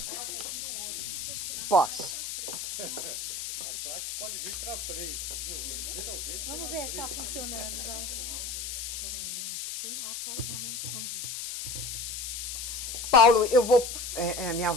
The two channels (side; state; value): left; noise; hiss, 5 dB below the sound